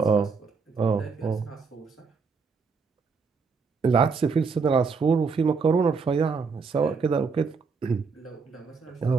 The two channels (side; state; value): left; quieter; 5.0 dB